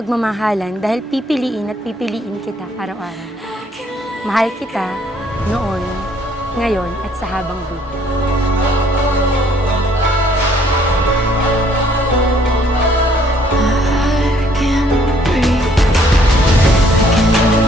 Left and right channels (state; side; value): normal; both; correlation 0.64